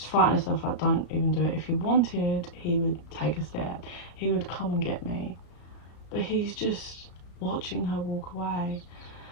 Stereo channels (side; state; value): right; late; 34 ms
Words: fighting herself, like, don't even do it. If he wanted, he would take a step. He would come and get me. But he's just watching her walk away.